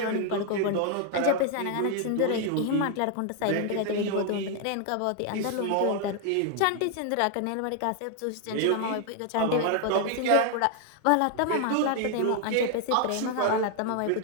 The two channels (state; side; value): different; both; correlation 0.00